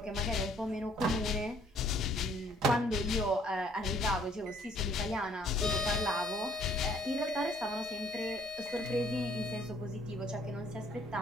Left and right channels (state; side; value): normal; both; correlation 0.61